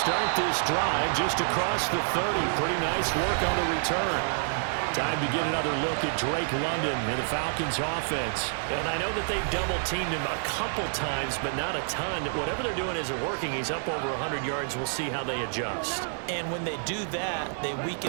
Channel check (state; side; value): silent; left; 59 dB below the other